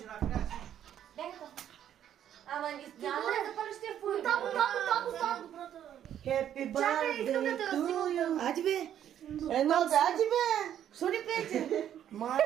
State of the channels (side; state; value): left; quieter; 10.3 dB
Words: накрая си. Ама няма да запалиш тия фури. Там. Happy Чакай, искам да те birthday to разснимам. you. Ади бе. Едно да, ади бе. Що ни пеете?